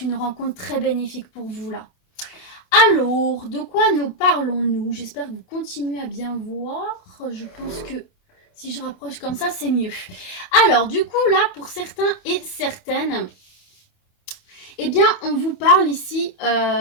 une rencontre très bénéfique pour vous, là. Alors, de quoi nous parlons-nous? J'espère que vous continuez à bien voir. Je pense que si je rapproche comme ça, c'est mieux. Alors, du coup, là, pour certains et certaines, eh bien, on vous parle ici...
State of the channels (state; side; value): late; right; 28 ms